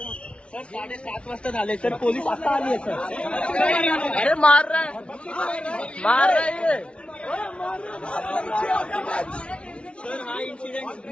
सर 7:30 वाजता झाले सर, पोलीस आता आली आहे सर. अरे मार रहा है सर हा इन्सिडेंट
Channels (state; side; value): late; right; 0.059 ms